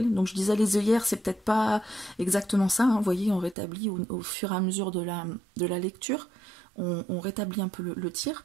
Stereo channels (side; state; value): left; drops out; at 3.6 s